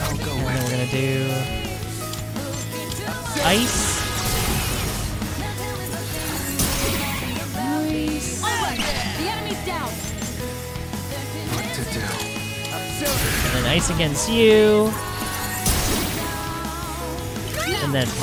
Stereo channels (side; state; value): both; identical; correlation 1.00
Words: And then we're gonna do ice. Nice. Alright, the enemy's down. And then ice against you. And then